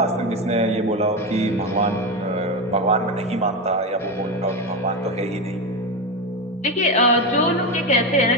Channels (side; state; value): both; normal; correlation 0.15